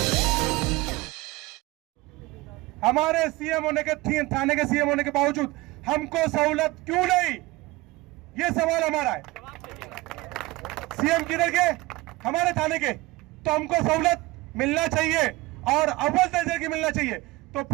हमारे सीएम होने के, थाने के सीएम होने के बावजूद हमको सहूलत क्यों नहीं, ये सवाल हमारा है। सीएम किधर के? हमारे थाने के। तो हमको सहूलत मिलना चाहिए और अव्वल दर्जे की मिलना चाहिए, तो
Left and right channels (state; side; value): quieter; left; 20.5 dB